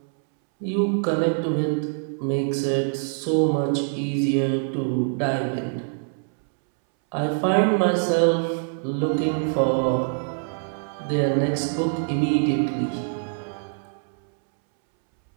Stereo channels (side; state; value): left; silent; 62 dB below the other